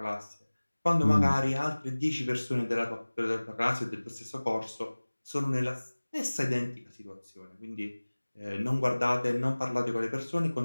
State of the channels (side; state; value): both; inverted; correlation -1.00